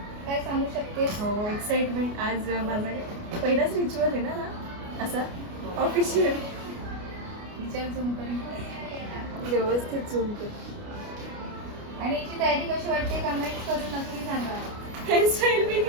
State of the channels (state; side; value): late; left; 29 ms